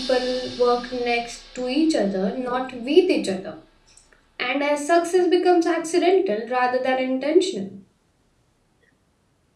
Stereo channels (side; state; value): both; identical; correlation 1.00